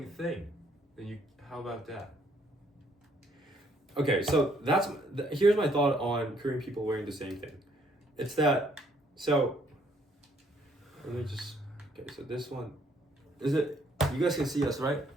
thing. Then how about that? Okay, so here's my thought on Korean people wearing the same thing. It's that let me just so this one is it. You guys can see us, right?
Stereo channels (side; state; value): both; normal; correlation 0.67